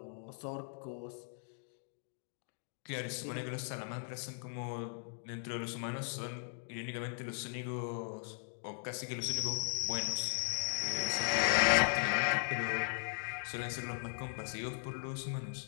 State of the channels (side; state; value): right; silent; digital silence